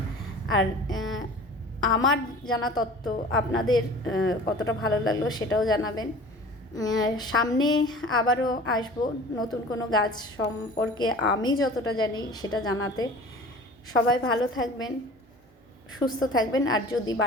আর আমার জানা তথ্য আপনাদের কতটা ভালো লাগলো সেটাও জানাবেন। সামনে আবারও আসবো নতুন কোনো গাছ সম্পর্কে আমি যতটা জানি সেটা জানাতে। সবাই ভালো থাকবেন, সুস্থ থাকবেন। আর যদি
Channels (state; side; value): normal; both; correlation 0.42